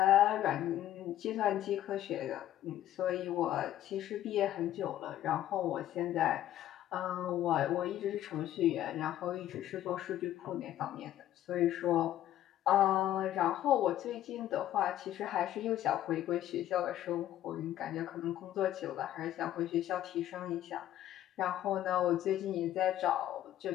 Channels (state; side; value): quieter; right; 12.7 dB